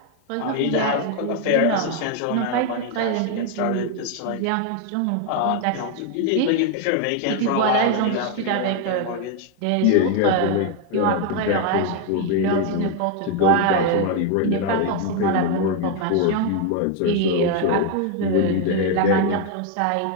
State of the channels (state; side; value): different; both; correlation 0.01